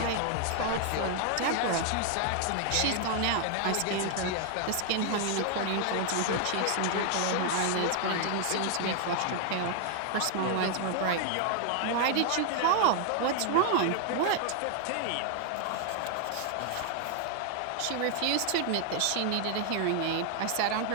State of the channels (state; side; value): different; both; correlation 0.00